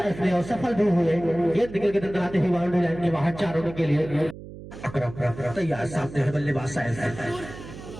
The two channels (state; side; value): noise; right; hum, 14 dB below the sound